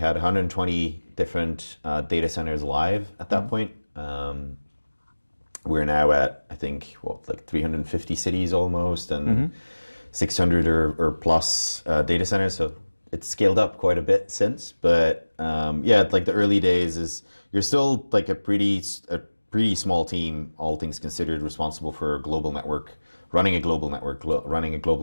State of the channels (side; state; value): both; inverted; correlation -1.00